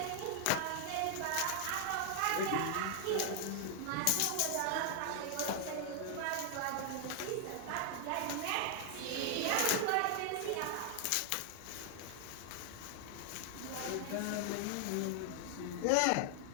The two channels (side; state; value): both; different; correlation 0.00